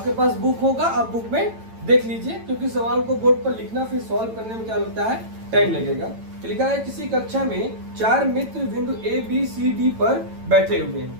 पास बुक होगा, आप बुक में देख लीजिए, क्योंकि सवाल को बोर्ड पर लिखना फिर सॉल्व करने में क्या लगता है, टाइम लगेगा। लिखा है किसी कक्षा में 4 मित्र बिंदु ए बी सी डी पर बैठे हुए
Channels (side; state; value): left; late; 9.0 ms